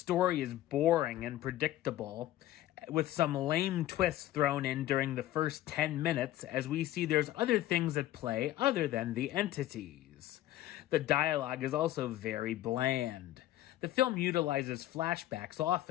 is boring and predictable, with some lame twists thrown in during the first 10 minutes, as we see there's other things at play other than the entities. The dialogue is also very bland. The film utilizes flashbacks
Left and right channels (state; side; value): quieter; right; 14.4 dB